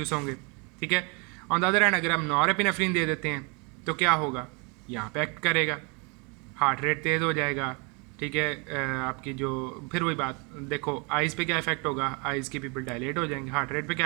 होंगे। ठीक है, ऑन द अदर हैंड अगर हम नॉरेपिनेफ्रिन दे देते हैं तो क्या होगा, यहाँ पे एक्ट करेगा, हार्ट रेट तेज़ हो जाएगा। ठीक है, आपकी जो फिर वही बात देखो, आइज़ पे क्या इफेक्ट होगा, आइज़ की पीपल डायलेट हो जाएंगे। हार्ट रेट पे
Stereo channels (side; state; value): left; quieter; 32.1 dB